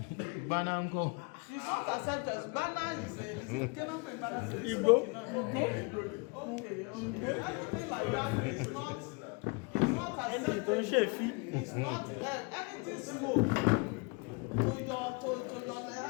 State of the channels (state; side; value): quieter; right; 30.6 dB